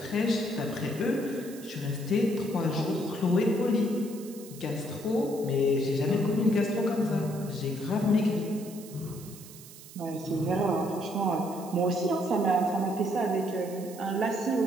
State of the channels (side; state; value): right; noise; hiss, 18 dB below the sound